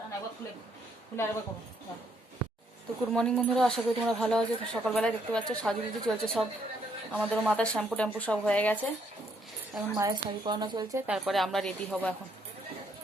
না একবার খুলে খুলে আরেকবার করবো। তো গুড মর্নিং বন্ধুরা, আশা করি তোমরা ভালো আছো। তো সকালবেলায় দেখতে পাচ্ছ সাজুগুজু চলছে সব, আমাদেরও মাথার শ্যাম্পু ট্যাম্পু সব হয়ে গেছে। এখন মায়ের শাড়ি পরানো চলছে, তারপরে আমরা রেডি হব।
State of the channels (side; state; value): both; normal; correlation 0.71